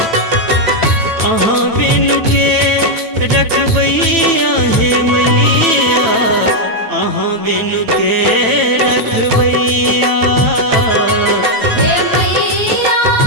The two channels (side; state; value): left; late; 9.1 ms